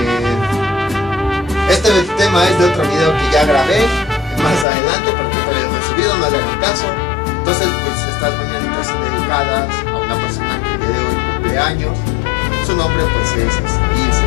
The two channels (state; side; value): drops out; right; at 4.7 s